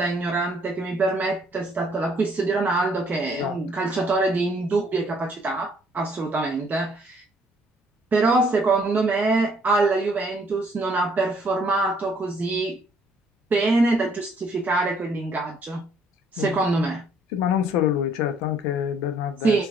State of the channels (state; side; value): normal; both; correlation 0.64